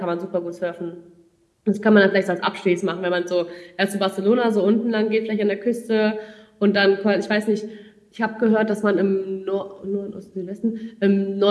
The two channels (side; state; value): both; identical; correlation 1.00